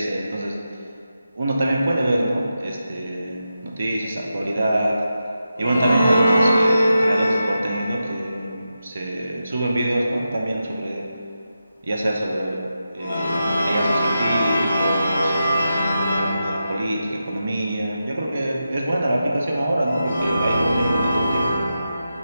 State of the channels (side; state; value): both; inverted; correlation -0.89